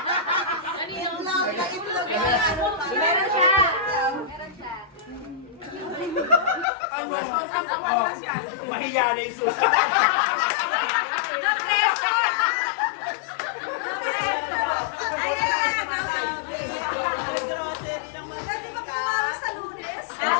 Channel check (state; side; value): drops out; right; at 6.7 s